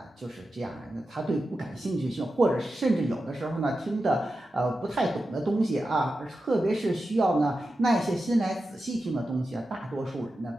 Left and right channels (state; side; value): normal; both; correlation 0.91